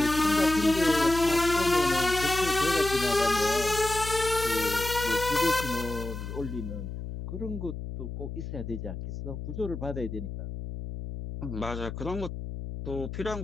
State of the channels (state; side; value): noise; left; hum, 8 dB below the sound